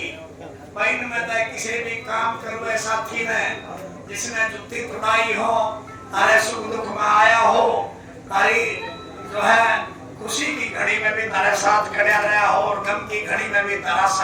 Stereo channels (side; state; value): both; identical; correlation 1.00